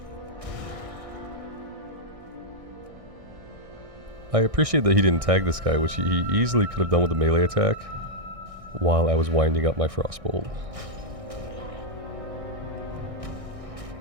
I appreciate that he didn't tag this guy, which he easily could have done with a melee attack while I was winding up my Frostbolt.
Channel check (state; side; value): late; left; 1.6 ms